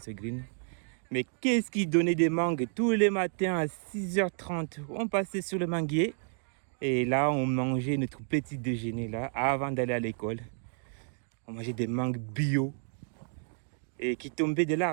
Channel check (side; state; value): left; silent; 57 dB below the other